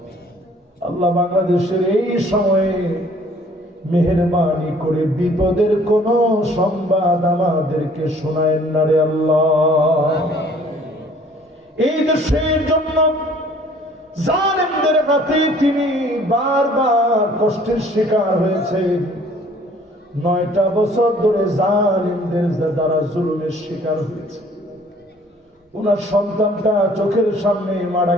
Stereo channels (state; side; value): normal; both; correlation 0.56